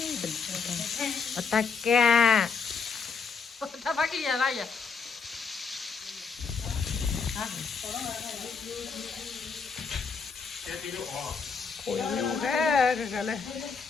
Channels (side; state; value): right; quieter; 5.4 dB